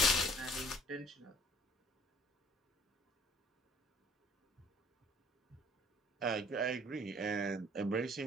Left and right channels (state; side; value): normal; both; correlation 0.54